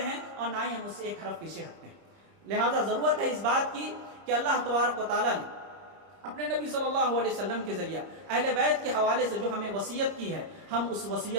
اور نہ ہی ہم اس سے ایک حرف پیچھے ہٹتے ہیں۔ لہٰذا ضرورت ہے اس بات کی کہ اللہ تبارک و تعالیٰ نے اپنے نبی صلی اللہ علیہ وسلم کے ذریعہ اہل بیت کے حوالے سے جو ہمیں وصیت کی ہے، ہم اس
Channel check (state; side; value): late; left; 30 ms